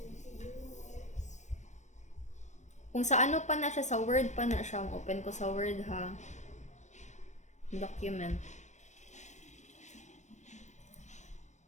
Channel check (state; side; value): late; right; 0.34 ms